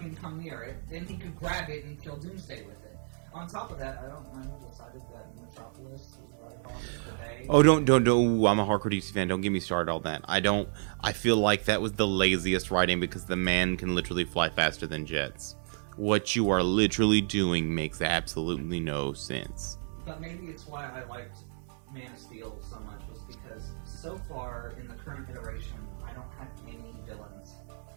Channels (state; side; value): silent; left; digital silence